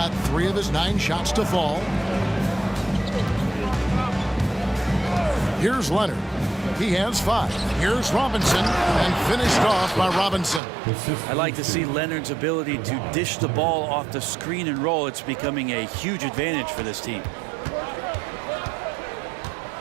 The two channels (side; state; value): left; drops out; at 10.6 s